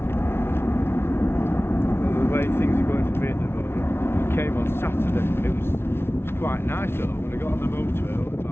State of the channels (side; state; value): right; late; 0.12 ms